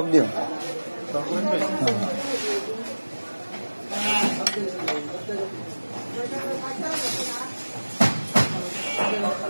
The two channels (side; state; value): both; inverted; correlation -1.00